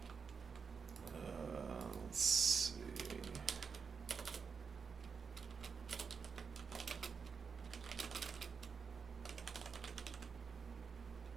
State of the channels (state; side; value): quieter; left; 5.7 dB